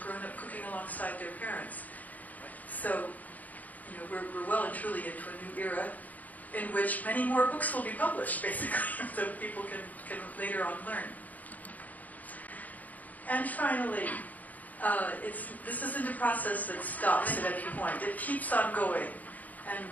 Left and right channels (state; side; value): late; right; 0.078 ms